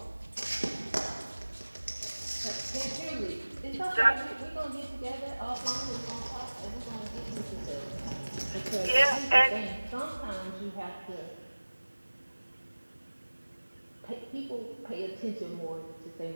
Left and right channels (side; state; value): both; inverted; correlation -1.00